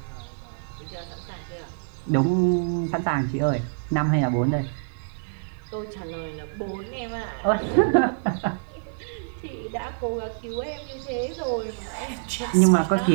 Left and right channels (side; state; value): left; silent; 61 dB below the other